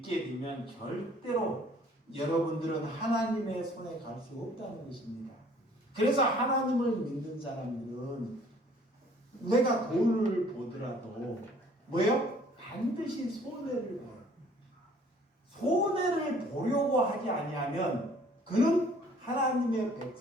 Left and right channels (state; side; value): normal; both; correlation 0.56